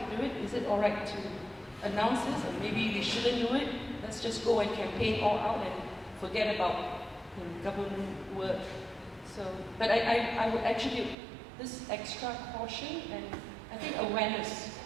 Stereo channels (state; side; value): drops out; left; at 11.2 s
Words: do it? Is it all right to announce this, or maybe we shouldn't do it? Let's just go and campaign all out and forget about government work. So, but I would attribute this extra caution and I think awareness,